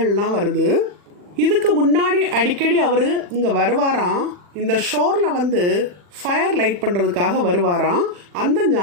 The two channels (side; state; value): left; late; 40 ms